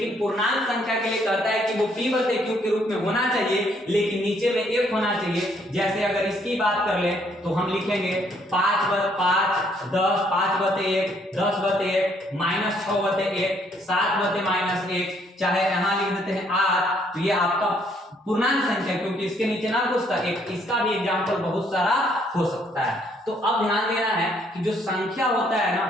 पूर्णांक संख्या के लिए कहता है कि वो p/q के रूप में होना चाहिए, लेकिन नीचे में 1 होना चाहिए। जैसे अगर इसकी बात कर ले तो हम लिखेंगे 5/5 10, 5/1 10/1 -6/1 7/-1, चाहे यहाँ लिख देते हैं 8। तो ये आपका पूर्णांक संख्या, क्योंकि इसके नीचे ना कुछ था, एक इसका भी एग्जाम्पल बहुत सारा हो सकता है। तो अब ध्यान देना है कि जो संख्या होता है ना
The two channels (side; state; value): both; normal; correlation 0.67